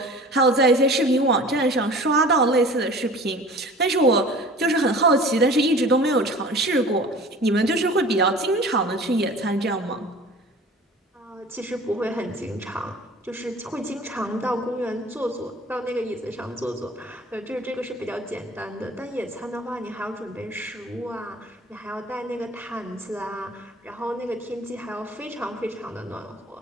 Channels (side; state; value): both; normal; correlation 0.43